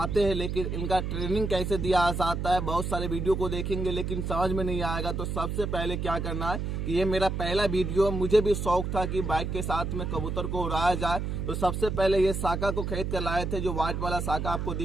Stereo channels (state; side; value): noise; right; hum, 2 dB below the sound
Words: हैं, लेकिन इनका ट्रेनिंग कैसे दिया जाता है, बहुत सारे वीडियो को देखेंगे लेकिन समझ में नहीं आएगा। तो सबसे पहले क्या करना है कि ये मेरा पहला वीडियो, मुझे भी शौक था कि बाइक के साथ में कबूतर को उड़ाया जाए। तो सबसे पहले ये साका को खरीद कर लाए थे, जो व्हाइट वाला साका आपको